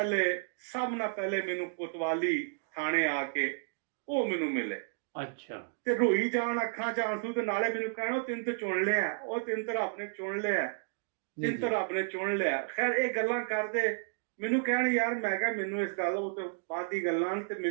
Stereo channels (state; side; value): silent; left; digital silence